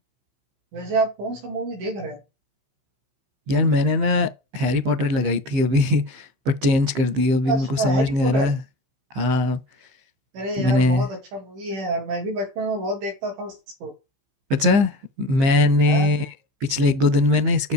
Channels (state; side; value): late; left; 15 ms